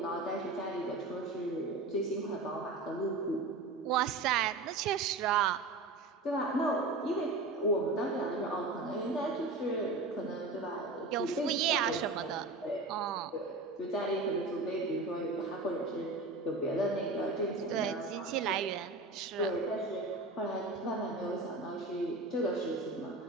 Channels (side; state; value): left; quieter; 3.2 dB